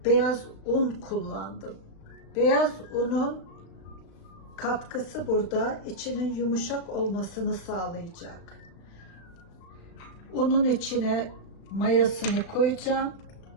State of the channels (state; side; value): late; right; 36 ms